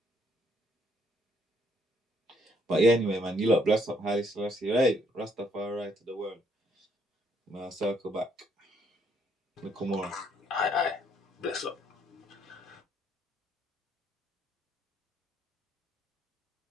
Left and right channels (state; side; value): normal; both; correlation 0.69